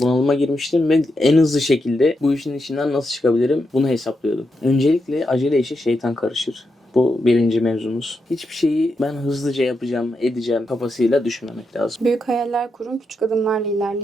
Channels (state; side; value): normal; both; correlation 0.85